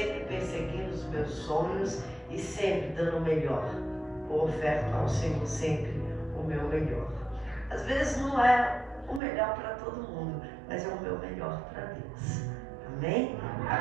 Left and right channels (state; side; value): drops out; left; at 9.2 s